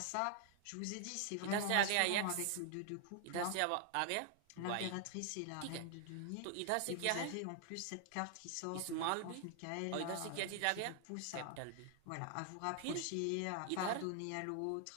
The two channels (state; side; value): different; both; correlation 0.00